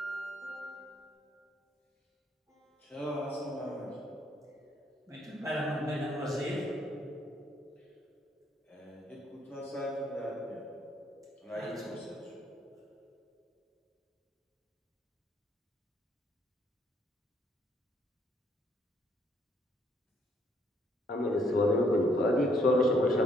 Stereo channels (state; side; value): normal; both; correlation 0.68